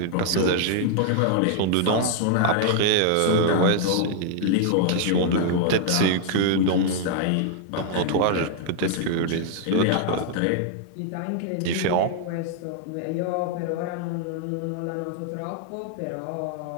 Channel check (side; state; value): both; different; correlation 0.00